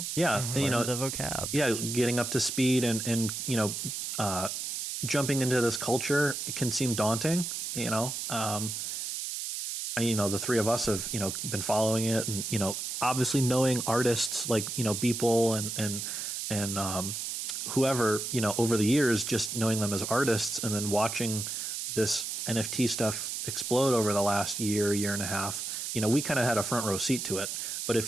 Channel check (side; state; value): right; noise; hiss, 4 dB below the sound